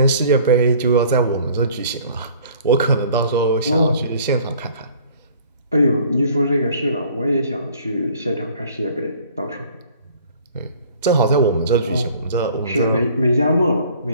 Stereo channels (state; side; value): inverted; both; correlation -0.52